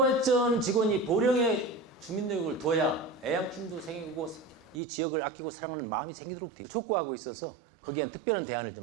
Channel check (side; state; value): left; drops out; at 4.8 s